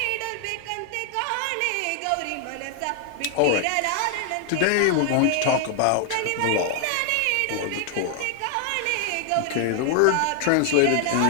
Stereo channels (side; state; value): both; different; correlation 0.00